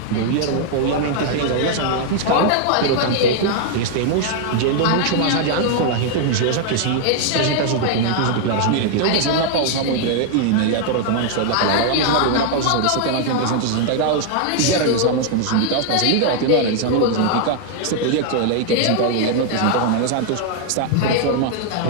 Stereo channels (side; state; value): both; different; correlation 0.00